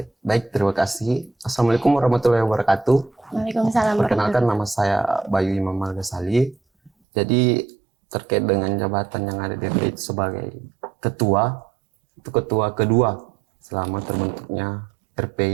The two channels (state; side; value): drops out; left; at 6.9 s